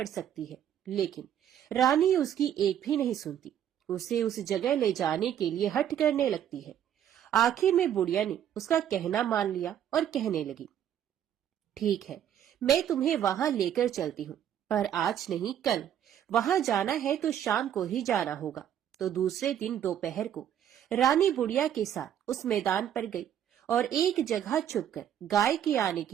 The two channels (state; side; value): quieter; left; 10.1 dB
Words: सकती है। लेकिन रानी उसकी एक भी नहीं सुनती, उसे उस जगह ले जाने के लिए हठ करने लगती है। आखिर में बुढ़िया ने उसका कहना मान लिया और कहने लगी, ठीक है, मैं तुम्हें वहां लेकर चलती हूँ, पर आज नहीं कल। वहां जाना है तो शाम को ही जाना होगा। तो दूसरे दिन दोपहर को रानी बुढ़िया के साथ उस मैदान पर गई और एक जगह छुपकर गाय के आने